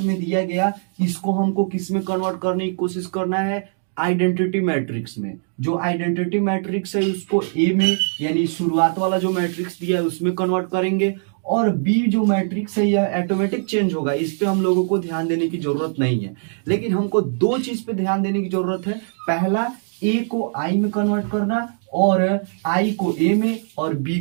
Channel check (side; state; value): left; silent; digital silence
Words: में दिया गया, इसको हमको किस में कन्वर्ट करने की कोशिश करना है? आइडेंटिटी मैट्रिक्स में। जो आइडेंटिटी मैट्रिक्स है उसको ए में, यानी शुरुआत वाला जो मैट्रिक्स दिया है उसमें कन्वर्ट करेंगे। और बी जो मैट्रिक्स है यह ऑटोमेटिक चेंज होगा, इस पे हम लोगों को ध्यान देने की जरूरत नहीं है। लेकिन हमको दो चीज पे ध्यान देने की जरूरत है। पहला, ए को आई में कन्वर्ट करना, और आई को ए में और बी